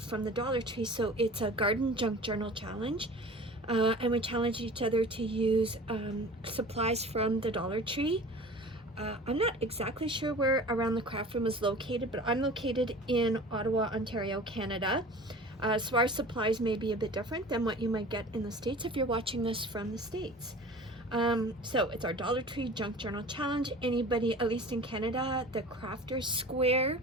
from the Dollar Tree. So it's a garden junk journal challenge, and we challenge each other to use supplies from the Dollar Tree. I'm not exactly sure where Around the Craft Room is located, but I'm located in Ottawa, Ontario, Canada. So our supplies may be a bit different than what you might get in the States if you're watching this from the States. So it's our Dollar Tree Junk Journal Challenge. Anybody, at least in Canada, the Crafters Square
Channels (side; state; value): both; normal; correlation 0.40